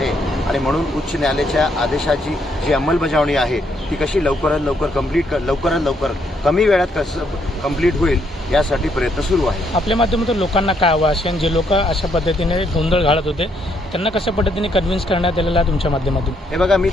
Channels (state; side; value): normal; both; correlation 0.73